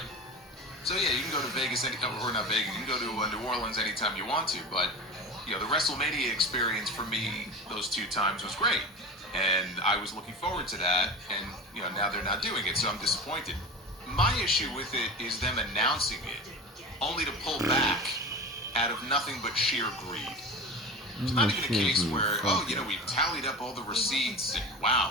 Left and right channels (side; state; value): both; normal; correlation 0.30